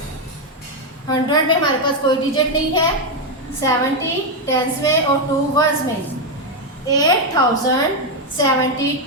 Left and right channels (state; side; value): normal; both; correlation 0.04